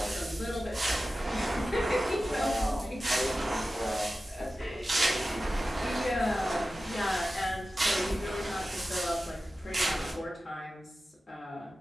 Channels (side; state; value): both; normal; correlation 0.94